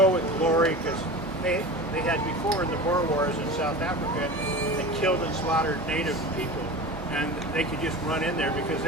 with glory, because they had before in the Boer Wars in South Africa, they killed and slaughtered native people, and they could just run in there because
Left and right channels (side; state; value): both; normal; correlation 0.32